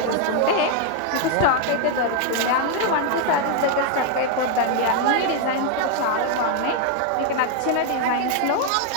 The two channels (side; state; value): both; different; correlation 0.00